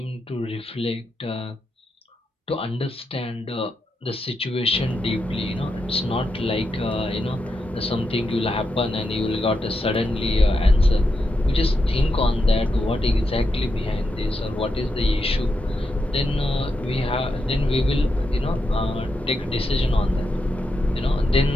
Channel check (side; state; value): both; normal; correlation 0.85